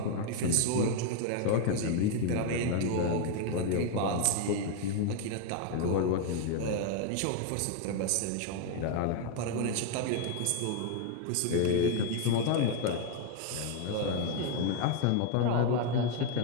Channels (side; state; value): both; different; correlation 0.01